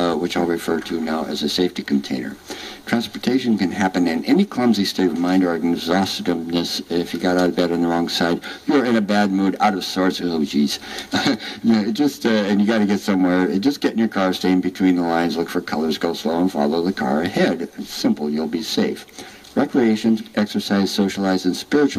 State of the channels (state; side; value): identical; both; correlation 1.00